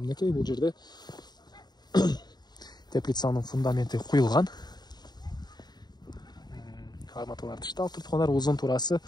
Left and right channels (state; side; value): late; right; 0.20 ms